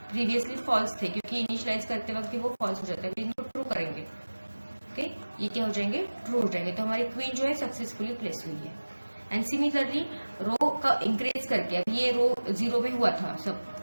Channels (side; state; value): both; inverted; correlation -1.00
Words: प्रीवियसली फॉल्स थे क्योंकि इनिशियलाइज करते वक्त वो फॉल्स हो जाता है, इनको ट्रू करेंगे, ओके, ये क्या हो जाएंगे, ट्रू हो जाएंगे, तो हमारी क्वीन जो है सक्सेसफुली प्लेस हुई है। एंड सिमिलरली रो का इंक्रीज करके, अब ये रो 0 में हुआ था सब,